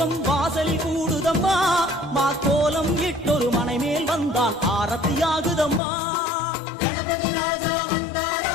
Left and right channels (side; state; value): right; drops out; at 5.8 s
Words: வாசலில் கூடுதம்மா. மாக்கோலம் இட்டொரு மனை மேல் வந்தான் ஆரத்தியாகுதம்மா. கணபதி ராஜா